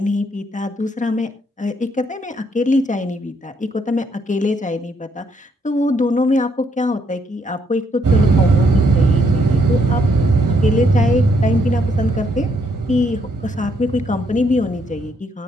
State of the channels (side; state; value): both; normal; correlation 0.72